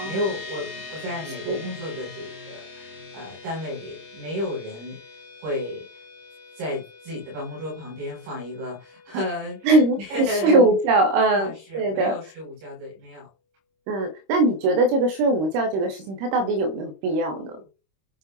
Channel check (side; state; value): left; late; 26 ms